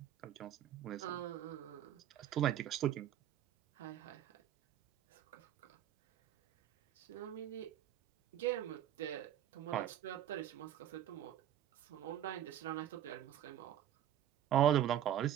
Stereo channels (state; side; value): quieter; left; 11.2 dB